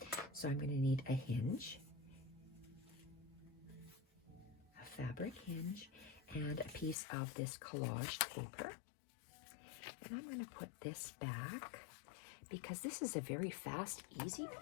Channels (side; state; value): right; drops out; at 7.0 s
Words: So I'm going to need a hinge, a fabric hinge, and a piece of this collage paper. And I'm going to put this back because this is a very fast, easy